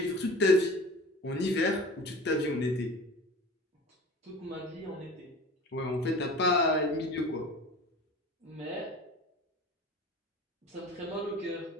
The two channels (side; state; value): both; normal; correlation 0.38